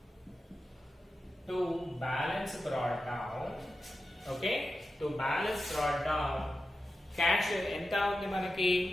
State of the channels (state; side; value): normal; both; correlation 0.91